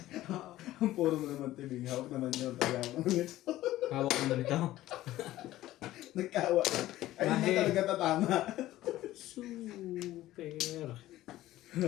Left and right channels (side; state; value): right; quieter; 15.3 dB